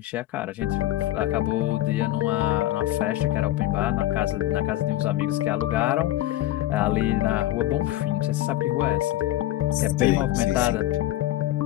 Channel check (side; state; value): right; quieter; 14.7 dB